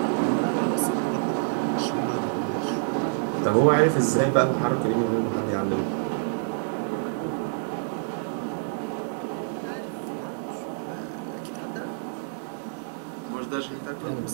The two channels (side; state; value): left; silent; 57 dB below the other